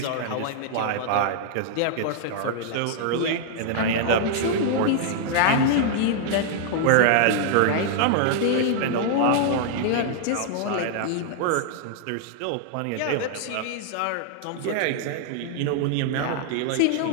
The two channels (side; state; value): both; different; correlation -0.01